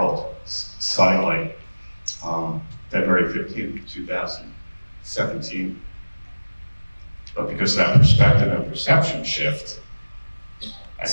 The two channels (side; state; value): both; inverted; correlation -1.00